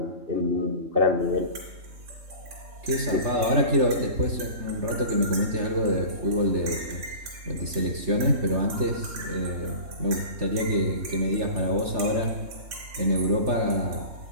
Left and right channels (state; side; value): late; left; 3.4 ms